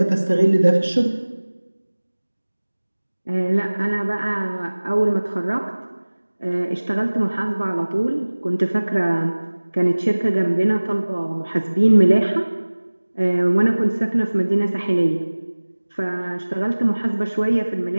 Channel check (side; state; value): both; inverted; correlation -1.00